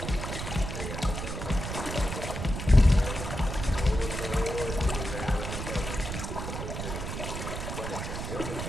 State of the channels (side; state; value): right; noise; rumble, 5 dB below the sound